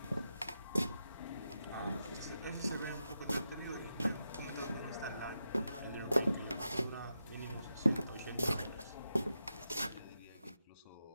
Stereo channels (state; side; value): inverted; both; correlation -0.87